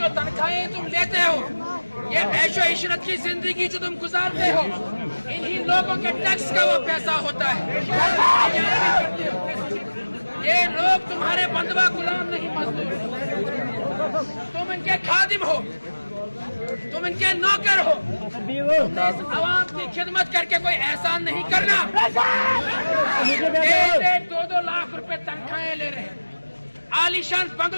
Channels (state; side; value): inverted; both; correlation -1.00